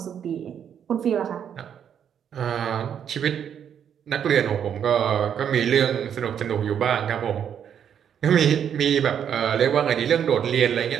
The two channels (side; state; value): left; quieter; 8.6 dB